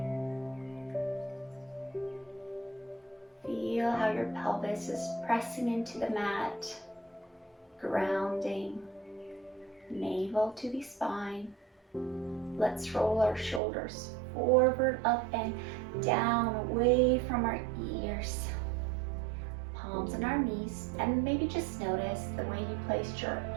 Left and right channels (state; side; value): drops out; left; at 13.6 s